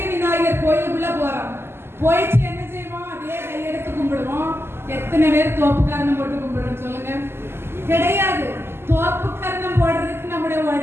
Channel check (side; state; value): left; late; 0.12 ms